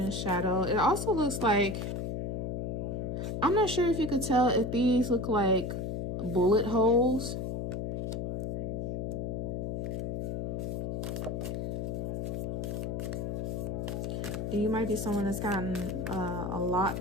shadow. It also looks like, I'm not sure if you could tell if these look like bullet holes. You might be someone that's gotten a lot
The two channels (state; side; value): noise; left; hum, 2 dB below the sound